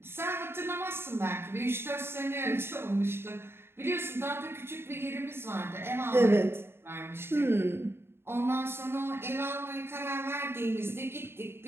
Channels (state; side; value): late; left; 0.11 ms